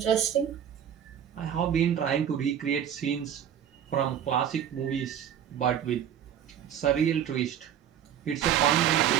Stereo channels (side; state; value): left; quieter; 9.4 dB